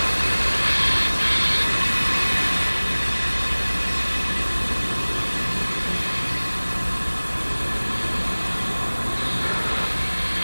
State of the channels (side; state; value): both; inverted; correlation -1.00